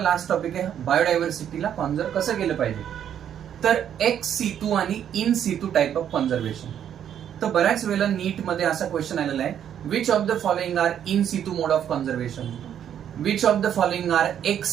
टॉपिक आहे, बायोडायव्हर्सिटीला कॉन्झर्व कसं केलं पाहिजे. तर एक्स सितू आणि in situ type of conservation. तर बऱ्याच वेळेला नीट मध्ये असा क्वेश्चन आलेला आहे, which of the following are in situ mode of conservation, which of the following are ex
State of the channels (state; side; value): quieter; left; 9.5 dB